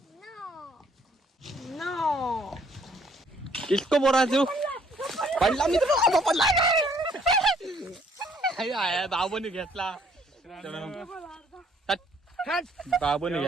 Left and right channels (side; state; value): both; normal; correlation 0.63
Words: इसको बोला तू पडला मी तुला पडला बाबूने घेतला बाबूने